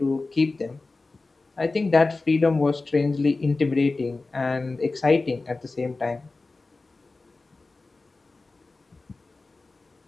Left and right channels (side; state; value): right; quieter; 3.5 dB